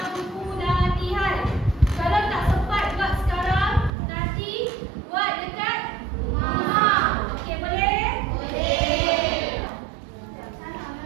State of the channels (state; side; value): drops out; left; at 4.0 s